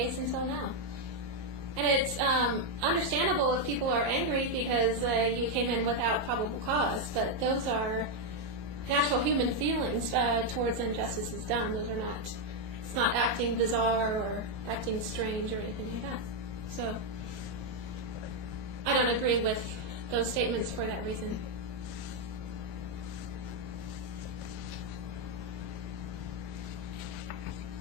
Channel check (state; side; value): late; left; 18 ms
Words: until now. And it's understandable if people are angry because you came in without probable cause, but those are natural human feelings towards injustices done. Those are not, it's not acting bizarre or acting strange or anything like that. So I don't agree with those statements for that reason.